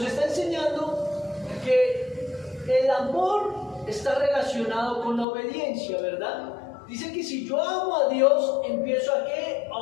está enseñando que el amor está relacionado con la obediencia, ¿verdad? Dice que si yo amo a Dios, empiezo ¿a qué?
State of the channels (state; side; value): drops out; right; at 5.2 s